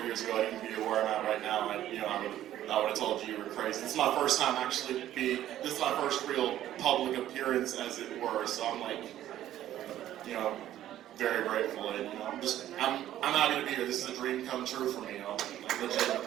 years ago I'd even be where I'm at right now, I would have told you were crazy. This is my first time this is my first real public appearance, as it were, so I'm very grateful, and I'm happy to be here. This is a dream come true for me,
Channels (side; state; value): left; quieter; 12.6 dB